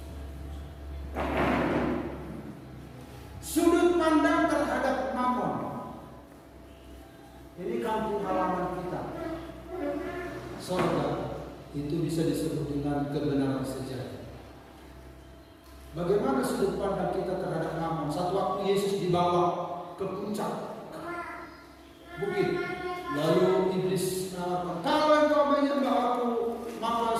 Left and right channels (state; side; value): identical; both; correlation 1.00